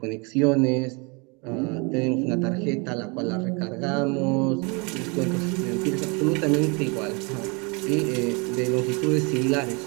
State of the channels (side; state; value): left; quieter; 31.1 dB